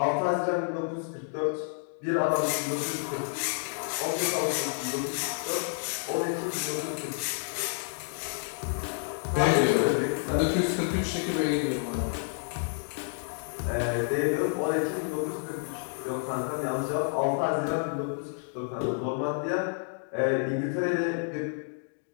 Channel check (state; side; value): silent; right; digital silence